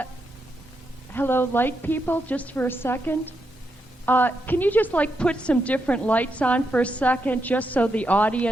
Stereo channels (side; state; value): both; normal; correlation 0.83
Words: light people, just for a second. Can you just, like, put some different lights on for a second, just so the